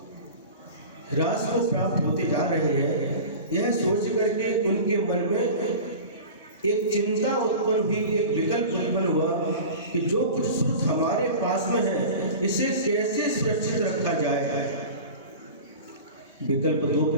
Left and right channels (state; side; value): inverted; both; correlation -0.35